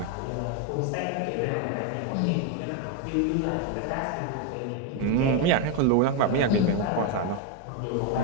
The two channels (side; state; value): both; different; correlation 0.02